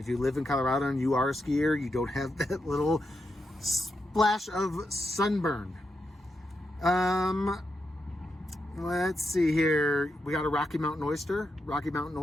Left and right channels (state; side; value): normal; both; correlation 0.85